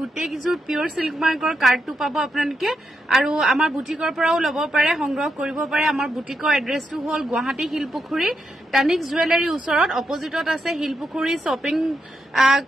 কিজোৰ পিওৰ সিল্ক মাৰ্কৰ কাৰ্ডটো পাব আপোনালোকে আৰু আমাৰ বুটিকৰ পৰাও ল'ব পাৰে সংগ্ৰহ কৰিব পাৰে আমাৰ বুটিকৰ এড্ৰেছটো হ'ল গুৱাহাটী শিলপুখুৰী টানিক জুৱেলাৰী ওচৰত অপজিটত আছে শিলপুখুৰী শ্বপিং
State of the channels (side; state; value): both; normal; correlation 0.83